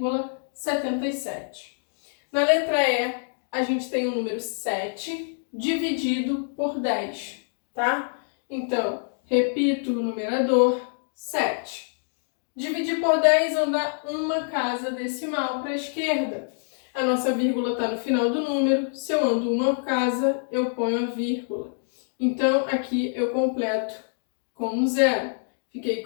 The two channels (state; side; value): silent; right; digital silence